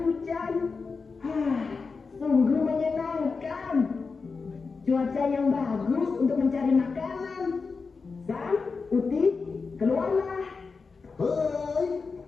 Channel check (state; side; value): quieter; right; 4.7 dB